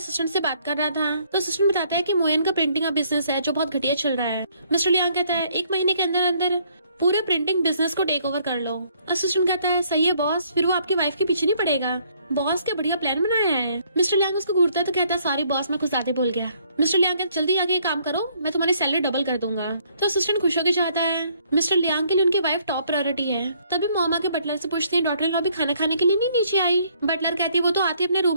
से बात कर रहा था तो असिस्टेंट बताता है कि मोयन का प्रिंटिंग का बिजनेस है जो बहुत घटिया चल रहा है। मिस्टर लियांग कहता है 1 महीने के अंदर अंदर पूरे प्रिंटिंग बिजनेस को टेक ओवर कर लो। असिस्टेंट कहता है सही है बॉस, फिर वो आपकी वाइफ के पीछे नहीं पड़ेगा। बॉस क्या बढ़िया प्लान बनाया है। मिस्टर लियांग उसको घूरता है तो कहता है सॉरी बॉस मैं कुछ ज्यादा बोल गया। मिस्टर लियांग कहता जल्दी आगे ये काम करो, मैं तुम्हारी सैलरी डबल कर दूंगा। तो असिस्टेंट खुश होकर जाता है। मिस्टर लियांग के लिए उनकी वाइफ टॉप प्रायोरिटी है। तभी मोमा के बटलर से पूछती है डॉटर इन लॉ भी खाना खाने के लिए नहीं नीचे आई? बटलर कहती है वो तो आती अपने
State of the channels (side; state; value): both; inverted; correlation -0.65